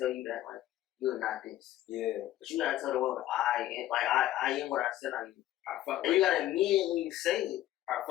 you that, like, you're not this. Yeah. But you gotta tell the world, I am what I said I am. And you gotta mean it when you say it. I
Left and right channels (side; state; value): right; quieter; 14.0 dB